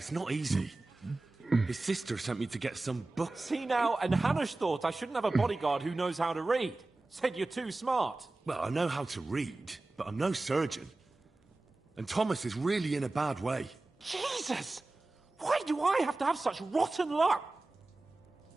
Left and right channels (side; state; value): left; quieter; 3.1 dB